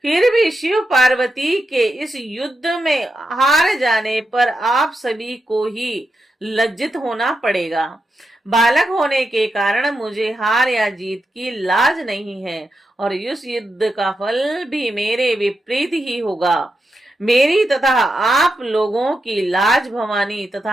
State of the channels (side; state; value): both; normal; correlation 0.87